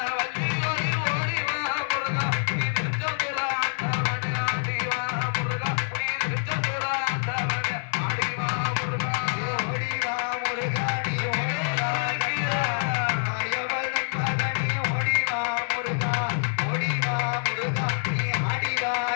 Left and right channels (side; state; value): right; silent; 61 dB below the other